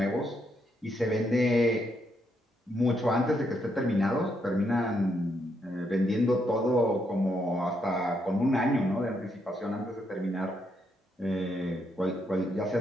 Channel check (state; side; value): normal; both; correlation 0.77